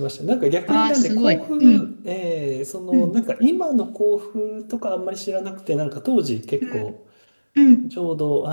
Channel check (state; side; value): inverted; both; correlation -1.00